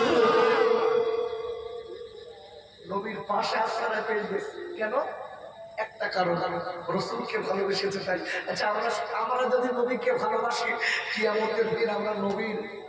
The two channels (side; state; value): both; identical; correlation 1.00